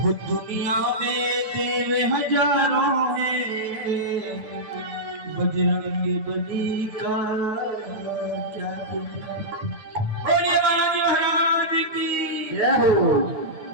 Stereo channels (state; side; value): late; left; 9.4 ms